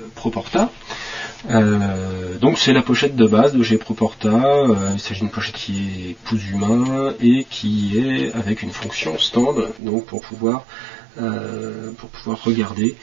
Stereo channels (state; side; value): drops out; left; at 9.8 s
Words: Proporta. Donc c'est la pochette de base de chez Proporta. Il s'agit d'une pochette qui est pouce humain et qui est avec une fonction stand, donc pour pouvoir regarder